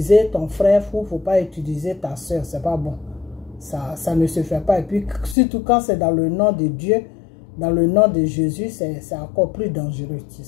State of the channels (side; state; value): right; drops out; at 5.4 s